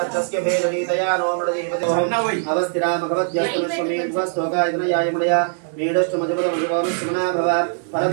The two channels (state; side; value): silent; left; digital silence